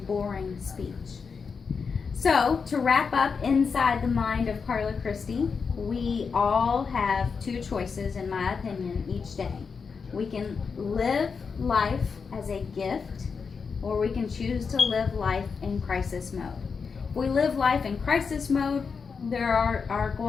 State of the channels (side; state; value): right; quieter; 5.5 dB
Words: boring speech. So, to wrap up inside the mind of Carla Christie, we all have two choices, in my opinion, each day. We can live life as a gift, or we can choose to live life in crisis mode. If we live life in crisis mode, there are